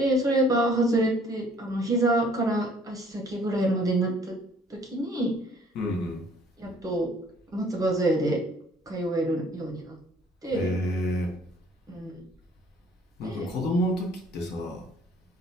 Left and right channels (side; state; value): both; normal; correlation 0.58